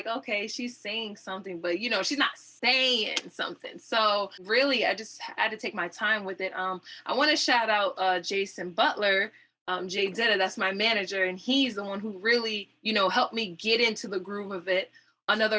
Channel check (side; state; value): both; identical; correlation 1.00